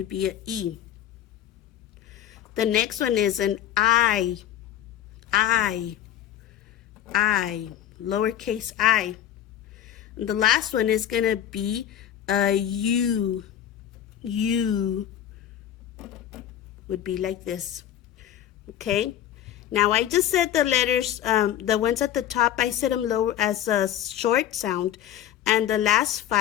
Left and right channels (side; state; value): right; quieter; 11.2 dB